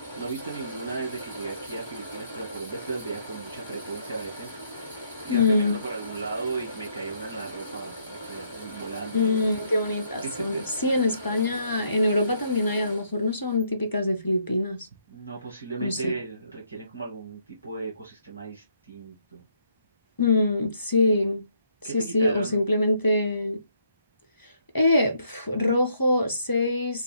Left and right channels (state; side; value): inverted; both; correlation -0.71